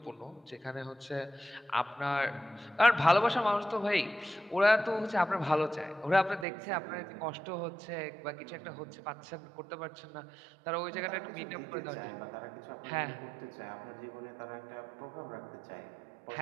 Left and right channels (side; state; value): left; drops out; at 6.5 s